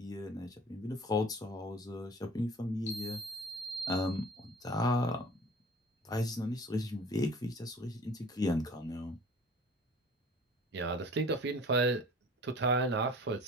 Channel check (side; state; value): both; normal; correlation 0.46